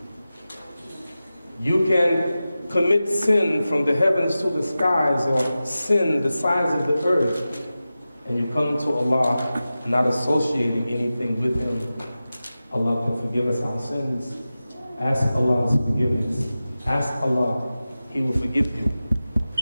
You can commit sin from the heavens to the skies or sin the size of the earth and you come to Allah not associating anything with Him, Allah can forgive us our sins. Ask Allah's forgiveness. Ask Allah, He will forgive you.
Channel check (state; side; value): inverted; both; correlation -0.94